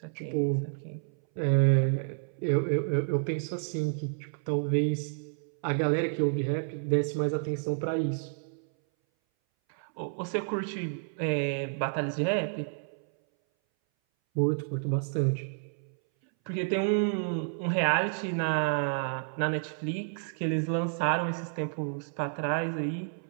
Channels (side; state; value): left; silent; 58 dB below the other